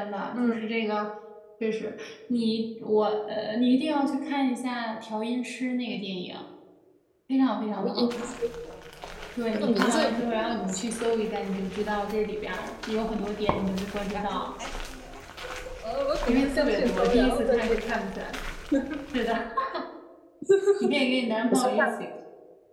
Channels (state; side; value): identical; both; correlation 1.00